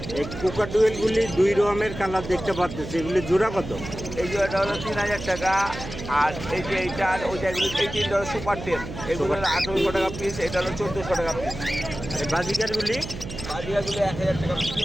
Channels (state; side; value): noise; right; hum, 10 dB below the sound